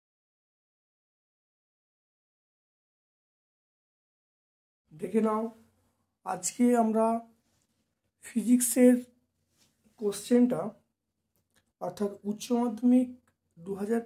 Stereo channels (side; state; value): both; identical; correlation 1.00